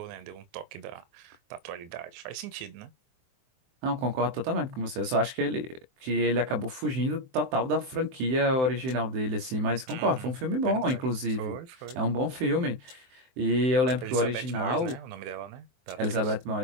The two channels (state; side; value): late; left; 23 ms